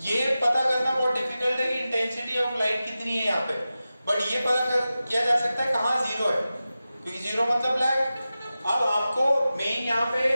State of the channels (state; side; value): inverted; both; correlation -0.94